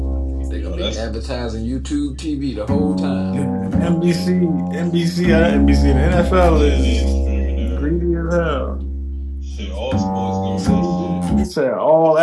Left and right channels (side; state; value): both; identical; correlation 1.00